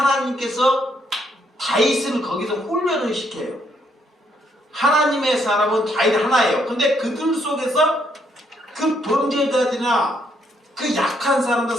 다윗을 거기서 훈련을 시켜요. 하나님의 사람은 다윗 하나예요. 근데 그들 속에서 그 범죄자들이나 그 약한 사람들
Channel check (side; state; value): both; normal; correlation 0.72